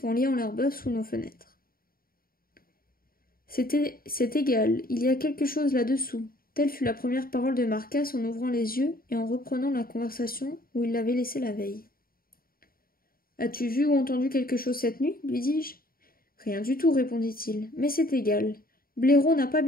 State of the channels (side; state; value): right; late; 0.43 ms